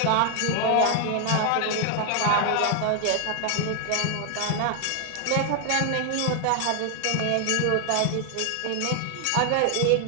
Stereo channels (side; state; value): both; different; correlation 0.00